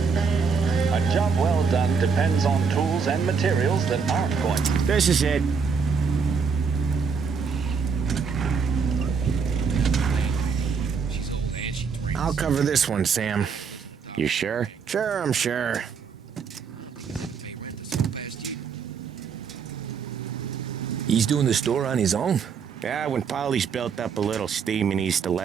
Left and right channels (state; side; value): quieter; left; 5.7 dB